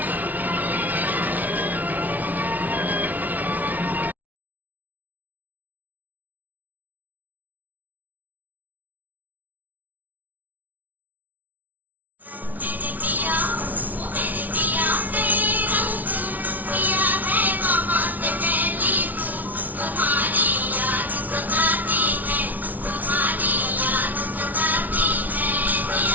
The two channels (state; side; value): late; left; 0.078 ms